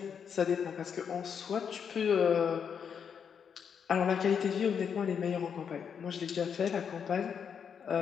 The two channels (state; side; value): quieter; right; 7.2 dB